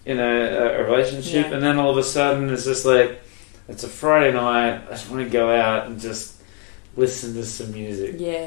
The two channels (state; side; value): quieter; right; 37.5 dB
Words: a relationship, and then all of a sudden it's just like, it's a Friday night, I just want to go out and just listen to some music.